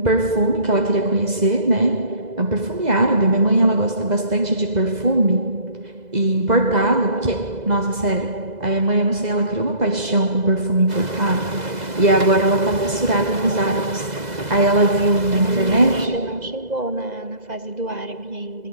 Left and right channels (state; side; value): late; left; 2.0 ms